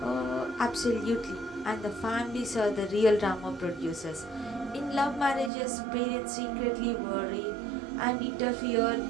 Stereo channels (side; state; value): left; drops out; at 5.5 s